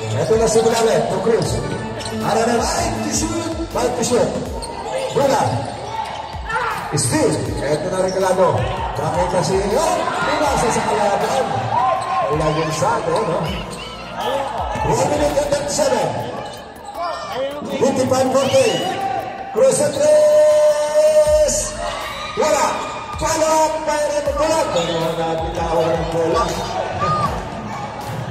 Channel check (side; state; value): both; identical; correlation 1.00